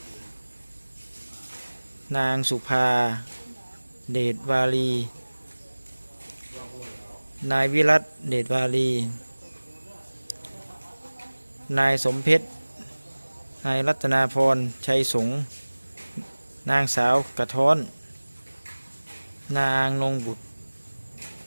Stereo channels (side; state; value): both; inverted; correlation -1.00